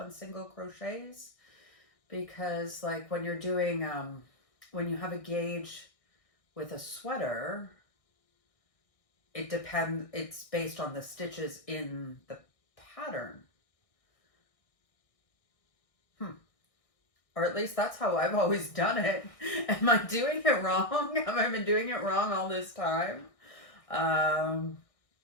single crochets? Because like when you're doing, when you have a gauge with a sweater, it's based on the stitches in the pattern. Or at least that's how I've always done it. Am I doing it wrong? Have I been doing it wrong all this time?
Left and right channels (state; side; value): late; right; 1.6 ms